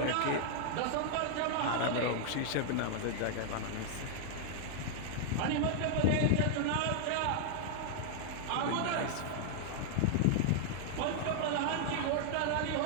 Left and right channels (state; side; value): different; both; correlation -0.01